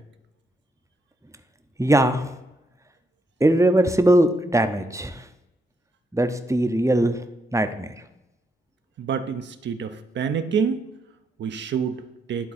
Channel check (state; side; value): normal; both; correlation 0.78